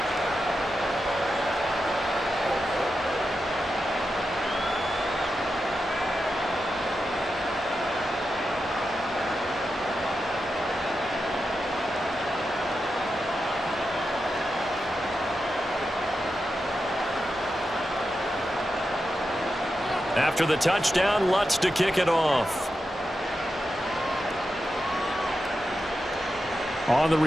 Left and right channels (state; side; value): normal; both; correlation 0.89